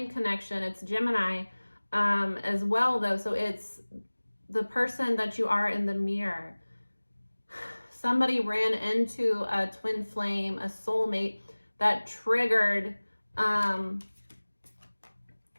connection. It's Gemini as well, though. So it's the person that you are in the mirror. Somebody ran into a twin flame, a soulmate that triggered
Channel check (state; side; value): inverted; both; correlation -1.00